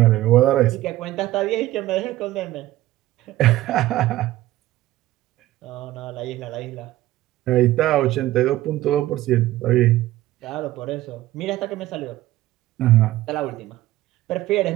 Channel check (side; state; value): left; quieter; 15.8 dB